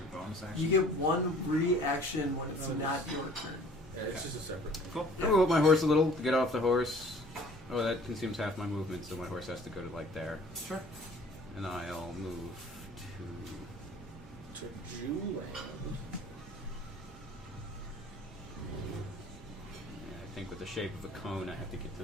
bonus action? You get 1 reaction when it's not your turn. Yeah, it's just a separate. Cool. I'm gonna move my horse a little, get off the horse. Oh, that consumes half my movement, so my horse has to go to like there. Sure. And I'll move to... To Jewland. Yeah, I think with the shape of a cone, I have to get to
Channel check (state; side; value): normal; both; correlation 0.51